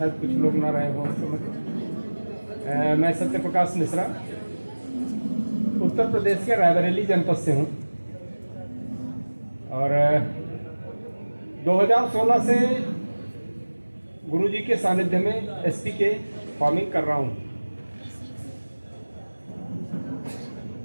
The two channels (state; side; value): inverted; both; correlation -1.00